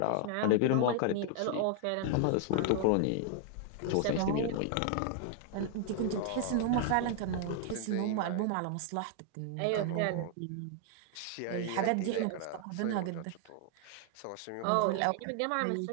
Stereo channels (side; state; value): both; different; correlation 0.00